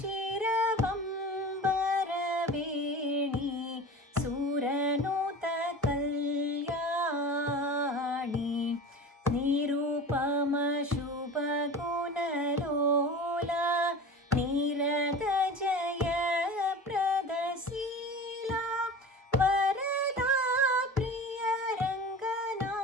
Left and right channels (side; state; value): both; normal; correlation 0.34